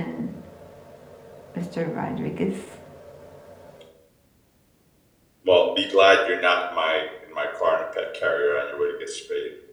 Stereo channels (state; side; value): identical; both; correlation 1.00